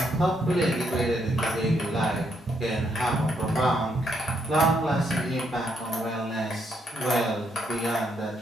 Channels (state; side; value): normal; both; correlation 0.75